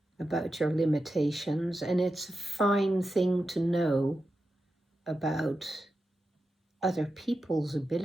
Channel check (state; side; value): normal; both; correlation 0.90